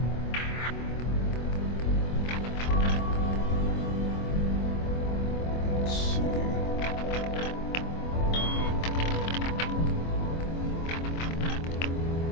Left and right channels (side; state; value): right; late; 25 ms